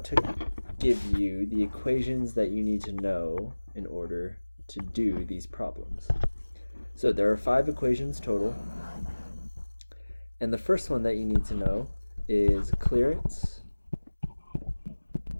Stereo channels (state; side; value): inverted; both; correlation -1.00